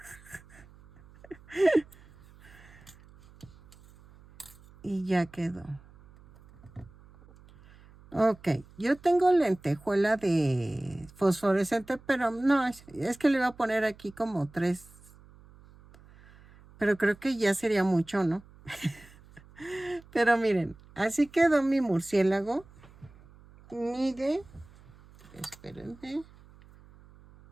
Y ya quedó. Ok, yo tengo lentejuela de fosforescente, pero no, es que le voy a poner aquí como 3. Pero creo que ya sería mucho, ¿no? Pero miren, así quedó mi murciélago. Mide, espérenme,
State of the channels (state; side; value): noise; right; hum, 24 dB below the sound